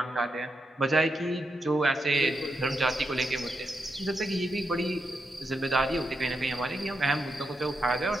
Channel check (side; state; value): both; normal; correlation 0.84